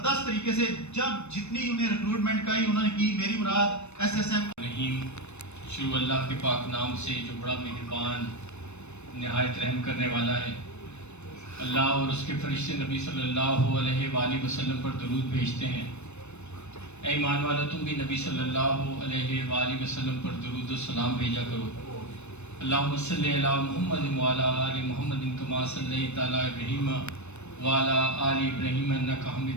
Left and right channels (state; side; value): late; right; 0.81 ms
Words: طریقے سے جب جتنی انہیں ریکروٹمنٹ کا ہی انہوں نے کی. میری مراد ایس ایس ایم رحیم. شروع اللہ کے پاک نام سے جو بڑا مہربان نہایت رحم کرنے والا ہے. اللہ اور اس کے فرشتے نبی صلی اللہ علیہ وآلہ وسلم پر درود بھیجتے ہیں. اے ایمان والا تم بھی نبی صلی اللہ علیہ وآلہ وسلم پر درود و سلام بھیجا کرو. اللہم صلی علی محمد وعلی آل محمد کما صلیت علی ابراہیم وعلی آل ابراہیم انک